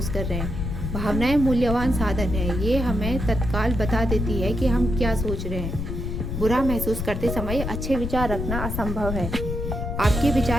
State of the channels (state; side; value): noise; left; rumble, 3 dB below the sound